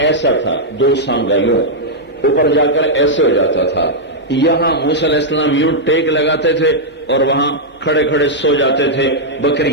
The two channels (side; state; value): both; normal; correlation -0.06